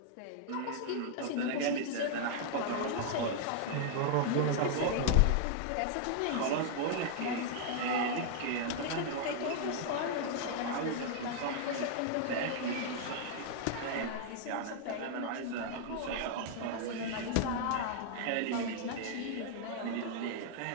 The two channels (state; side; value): different; both; correlation -0.01